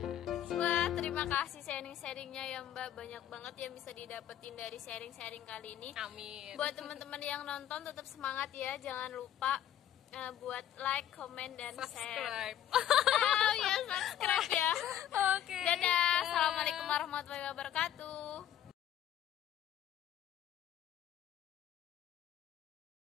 Wah, terima kasih sharing-sharingnya ya Mbak. Banyak banget yang bisa didapetin dari sharing-sharing kali ini. Amin. Buat teman-teman yang nonton tetap semangat ya. Jangan lupa buat like, comment, dan subscribe. Subscribe ya. Oke. Dadah. Assalamualaikum warahmatullahi wabarakatuh.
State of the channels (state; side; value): quieter; right; 11.1 dB